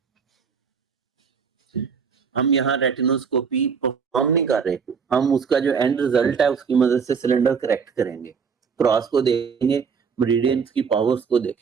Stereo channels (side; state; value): left; quieter; 6.1 dB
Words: हम यहाँ रेटिनोस्कोपी परफॉर्म नहीं कर रहे, हम उसका जो एंड रिजल्ट है उसकी मदद से सिलेंडर करेक्ट करेंगे, क्रॉस को देखेंगे, मेरिडियंस की पावर्स को